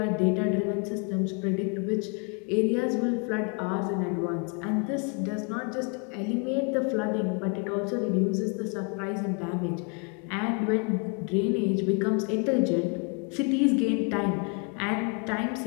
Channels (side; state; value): right; quieter; 36.2 dB